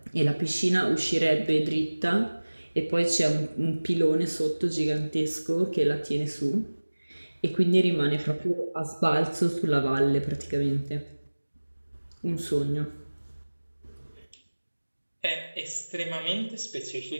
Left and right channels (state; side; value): inverted; both; correlation -1.00